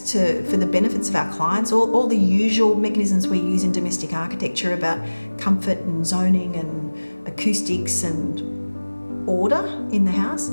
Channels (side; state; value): both; inverted; correlation -1.00